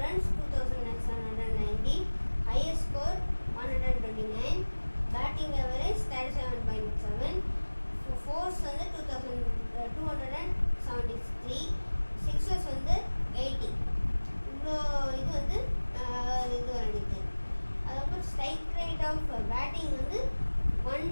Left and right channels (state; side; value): inverted; both; correlation -1.00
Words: runs 2790, highest score 129, batting average 37.7, force வந்து 2273, சிக்ஸஸ் வந்து 80. இவ்வளோ இது வந்து இது வந்துருக்கு. அதுக்கப்புறம் ஸ்ட்ரைக் ரேட் ஆஃப் பேட்டிங் வந்து